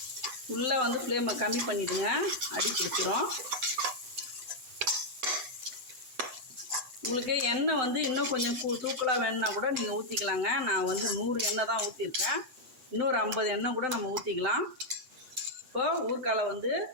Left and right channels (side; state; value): left; late; 7.8 ms